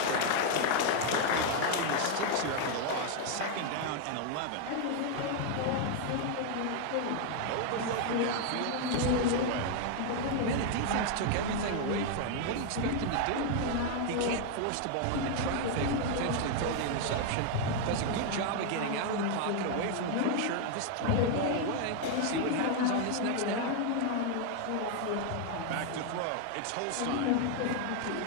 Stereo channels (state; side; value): different; both; correlation 0.00